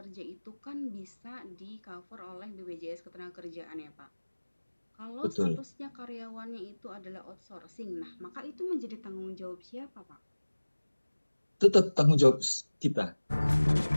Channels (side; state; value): both; inverted; correlation -1.00